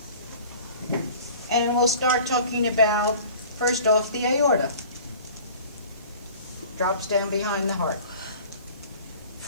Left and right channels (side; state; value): both; inverted; correlation -0.44